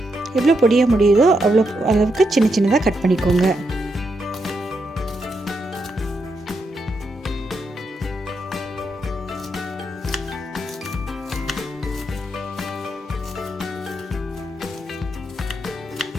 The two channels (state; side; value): normal; both; correlation 0.82